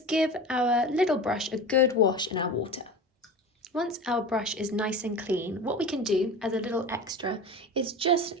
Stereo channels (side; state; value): both; normal; correlation 0.31